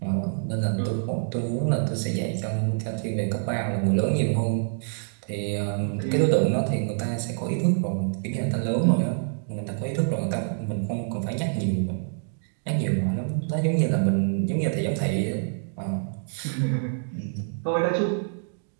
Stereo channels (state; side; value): silent; left; digital silence